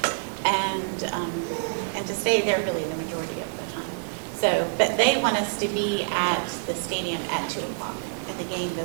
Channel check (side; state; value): left; silent; digital silence